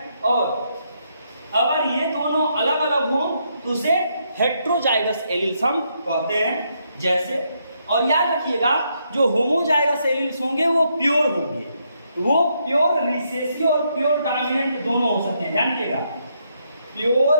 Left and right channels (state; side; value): inverted; both; correlation -0.77